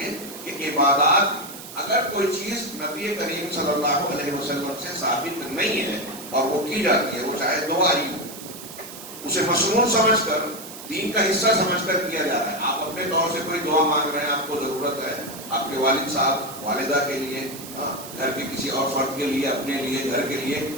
کہ عبادات اگر کوئی چیز نبی کریم صلی اللہ علیہ وسلم سے ثابت نہیں ہے اور وہ کی جاتی ہے، وہ چاہے دعا ہی ہو، اسے مصنون سمجھ کر دین کا حصہ سمجھ کر کیا جا رہا ہے. آپ اپنے طور سے کوئی دعا مانگ رہے ہیں، آپ کو ضرورت ہے آپ کے والد صاحب والدہ کے لیے، گھر کے کسی اور فرد کے لیے، اپنے لیے، گھر کے لیے،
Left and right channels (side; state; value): right; noise; hiss, 13 dB below the sound